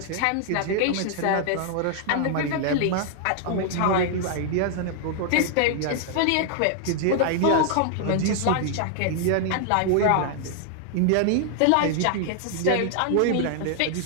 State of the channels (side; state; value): both; different; correlation 0.00